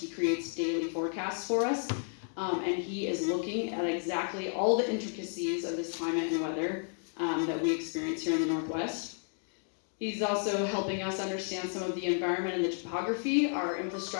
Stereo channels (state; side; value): silent; right; 56 dB below the other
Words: creates daily forecasts for us, and he is looking at exactly all the intricacies of this climate and weather that we experience here in the Northwest. He's also helping us understand some of the environment and the topography. Our